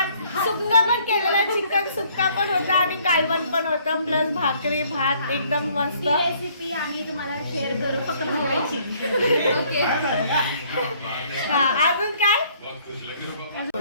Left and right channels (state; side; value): inverted; both; correlation -0.62